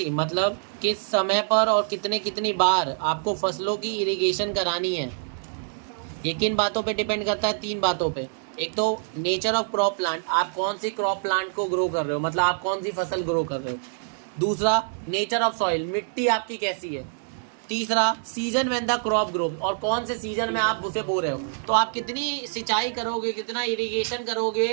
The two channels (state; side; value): silent; left; digital silence